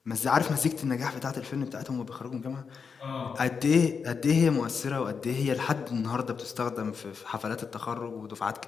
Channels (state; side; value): quieter; right; 5.8 dB